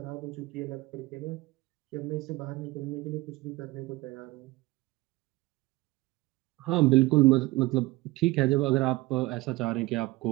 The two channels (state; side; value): quieter; left; 20.7 dB